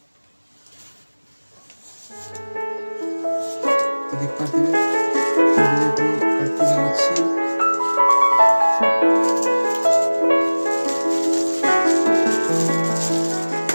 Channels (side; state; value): both; inverted; correlation -1.00